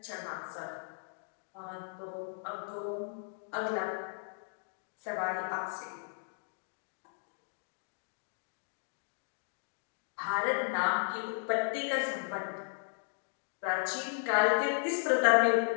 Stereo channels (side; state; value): right; silent; digital silence